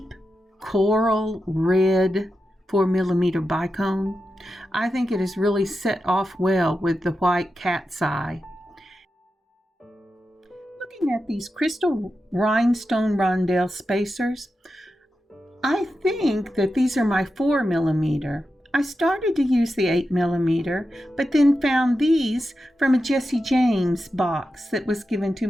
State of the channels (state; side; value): normal; both; correlation 0.90